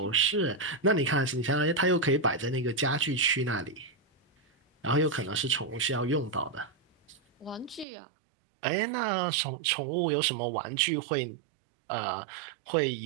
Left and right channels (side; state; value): left; drops out; at 7.9 s